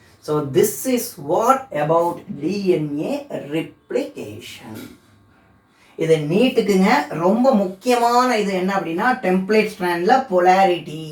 So this is what about DNA replication. இது நீட்டுக்குங்க ரொம்ப முக்கியமான இது என்ன அப்படின்னா டெம்ப்ளேட் ஸ்ட்ராண்டில் பொலாரிட்டி,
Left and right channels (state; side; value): identical; both; correlation 1.00